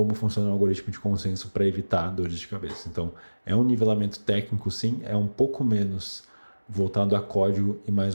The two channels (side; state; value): both; inverted; correlation -1.00